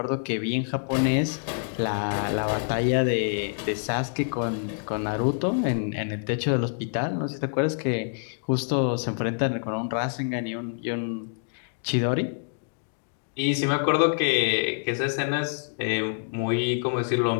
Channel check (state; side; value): silent; right; digital silence